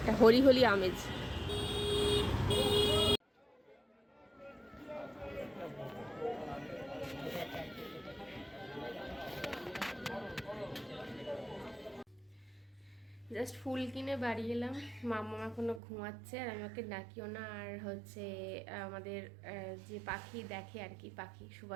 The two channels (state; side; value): drops out; left; at 15.8 s